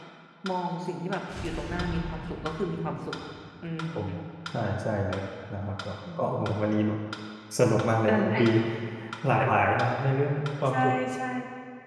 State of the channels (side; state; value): both; identical; correlation 1.00